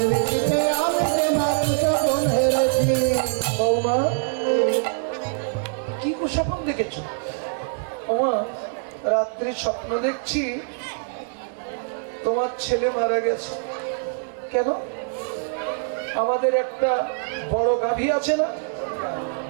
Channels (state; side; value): silent; left; 60 dB below the other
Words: মাতৃ সকল হেরেছি। বৌমা কি কুস্বপ্ন দেখেছো? ওমা রাত্রি স্বপ্ন দেখছি তোমার ছেলে মারা গেছে। কেন? আমাদের একটা বড় গাভী আছে না,